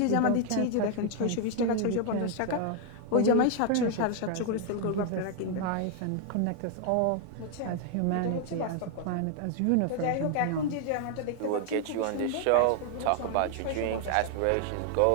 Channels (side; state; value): both; different; correlation 0.00